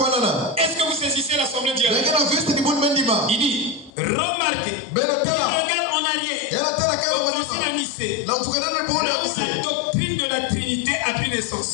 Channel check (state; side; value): drops out; right; at 3.9 s